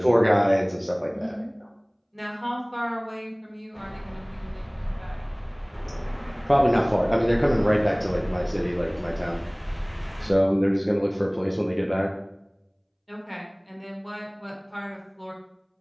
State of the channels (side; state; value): both; identical; correlation 1.00